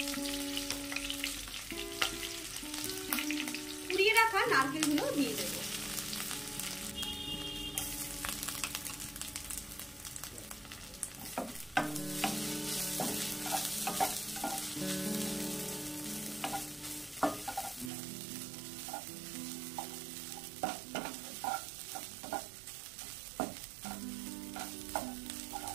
কুড়িয়ে রাখা নারকেলগুলো দিয়ে দেব।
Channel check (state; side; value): drops out; left; at 17.9 s